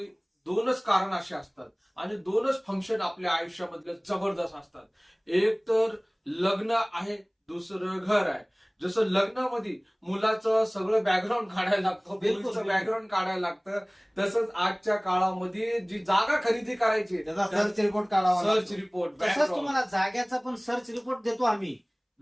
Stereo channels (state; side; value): identical; both; correlation 1.00